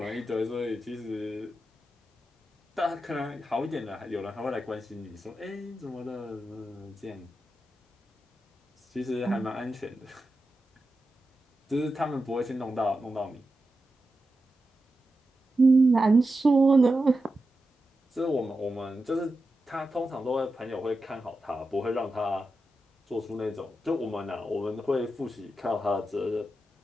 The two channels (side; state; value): both; normal; correlation 0.90